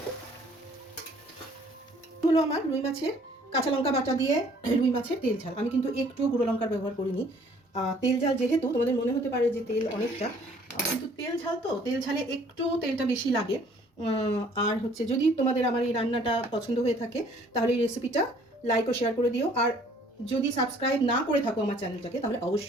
হলো আমার রুই মাছের কাঁচা লঙ্কা বাটা দিয়ে রুই মাছের তেল ঝাল। আমি কিন্তু একটু গুঁড়ো লঙ্কার ব্যবহার করিনি। তেল ঝাল যেহেতু, তোমাদের মনে হতে পারে যে তেল অনেকটা, কিন্তু তেল ঝাল তো, তেল ঝালে একটু তেলটা বেশি লাগে। আর হচ্ছে, যদি তোমাদের আমার এই রান্নাটা পছন্দ হয়ে থাকে তাহলে এই রেসিপিটা লাইক ও শেয়ার করে দিও। আর যদি সাবস্ক্রাইব না করে থাকো আমার চ্যানেলটাকে, তাহলে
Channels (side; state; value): both; normal; correlation 0.58